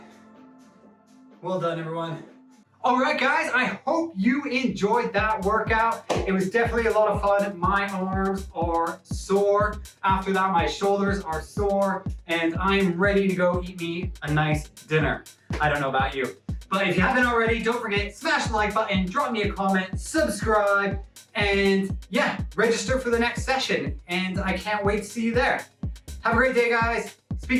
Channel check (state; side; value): identical; both; correlation 1.00